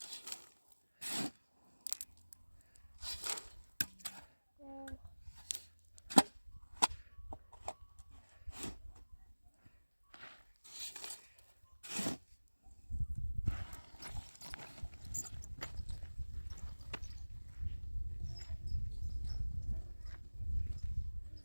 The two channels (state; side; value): inverted; both; correlation -1.00